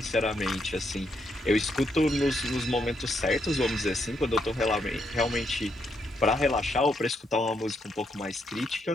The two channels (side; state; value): both; normal; correlation 0.78